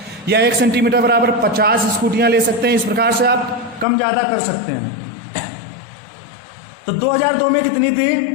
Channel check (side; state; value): right; drops out; at 3.9 s